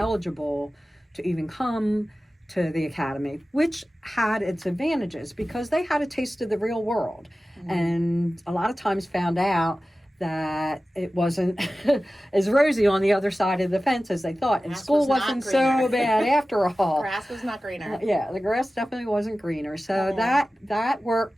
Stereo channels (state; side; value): normal; both; correlation 0.95